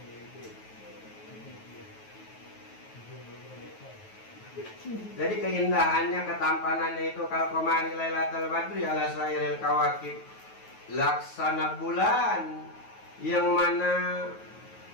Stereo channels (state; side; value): late; right; 9.3 ms